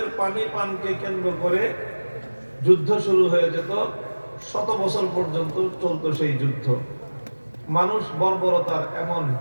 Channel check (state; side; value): inverted; both; correlation -1.00